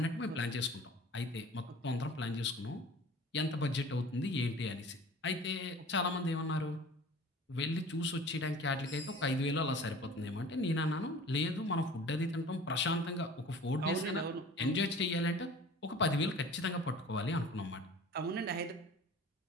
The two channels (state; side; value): normal; both; correlation 0.43